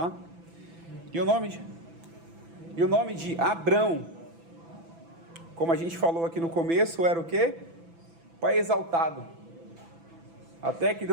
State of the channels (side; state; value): left; late; 6.0 ms